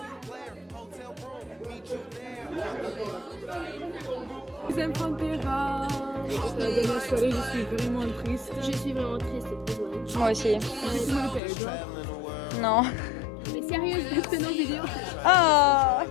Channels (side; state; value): right; drops out; at 11.4 s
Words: Deuxième Pantera. La dernière soirée, je suis vraiment triste. Je suis vraiment triste, désolée. moi aussi. Toi Non. Mais sérieux, je fais nos vidéos. Ah.